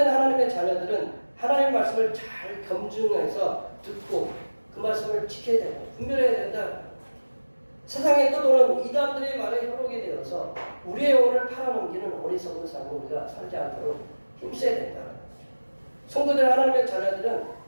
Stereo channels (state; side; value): inverted; both; correlation -1.00